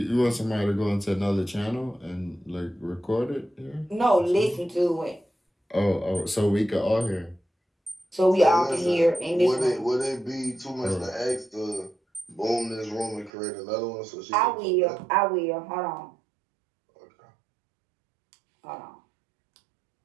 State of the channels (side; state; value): left; drops out; at 13.3 s